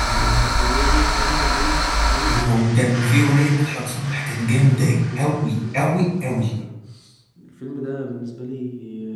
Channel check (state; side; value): identical; both; correlation 1.00